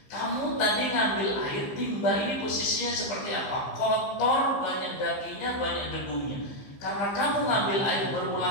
kamu tadi ngambil air, timba ini posisinya seperti apa? Kotor, banyak dagingnya, banyak debunya. Karena kamu ngambil air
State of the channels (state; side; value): late; right; 15 ms